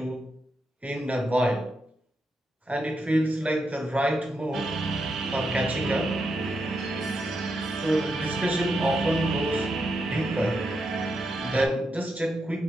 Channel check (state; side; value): normal; both; correlation 0.84